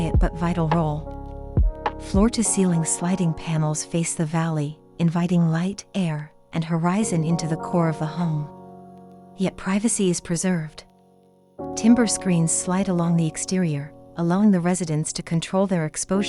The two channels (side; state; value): both; identical; correlation 1.00